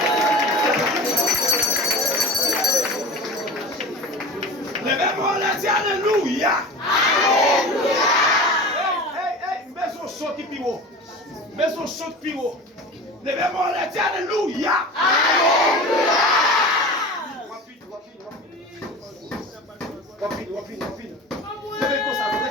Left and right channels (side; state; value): both; normal; correlation 0.33